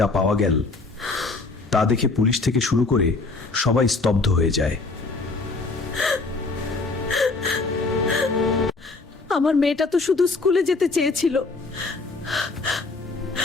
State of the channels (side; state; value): right; quieter; 3.7 dB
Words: পাওয়া গেল তা দেখে পুলিশ থেকে শুরু করে সবাই স্তব্ধ হয়ে যায়। আমার মেয়েটা তো শুধু স্কুলে যেতে চেয়েছিল।